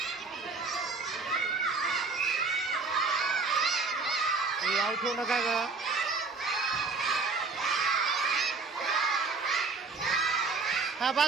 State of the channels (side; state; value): left; quieter; 4.2 dB